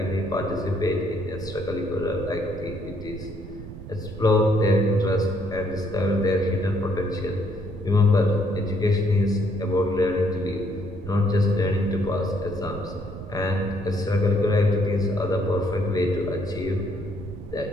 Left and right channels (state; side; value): noise; right; rumble, 12 dB below the sound